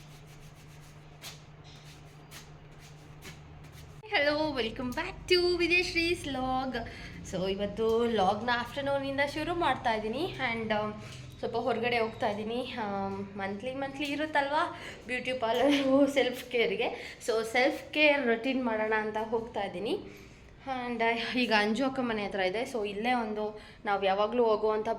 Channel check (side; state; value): both; identical; correlation 1.00